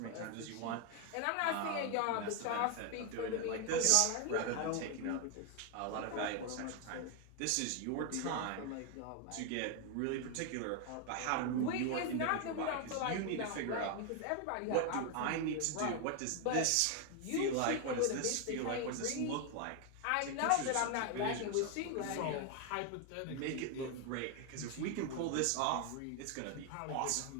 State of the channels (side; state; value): both; different; correlation 0.01